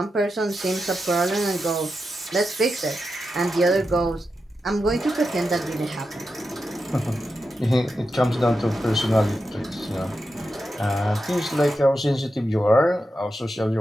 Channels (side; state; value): both; normal; correlation 0.89